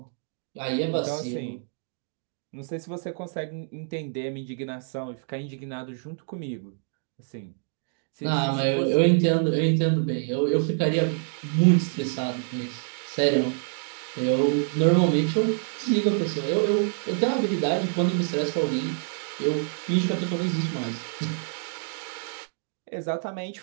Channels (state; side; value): silent; left; 60 dB below the other